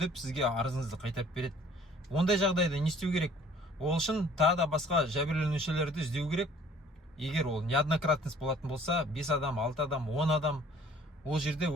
сізге арызыңызды қайтарып береді. Ондай жағдайда не істеу керек? Ол үшін тағы да басқа жәбірленушілерді іздеу керек. Егер ол неоднократность болатын болса, 5 адам, 6 адам, 10 адам, ол жерде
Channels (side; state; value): both; normal; correlation 0.54